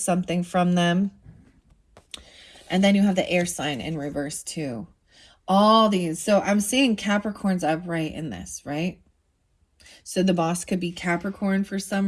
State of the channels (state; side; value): identical; both; correlation 1.00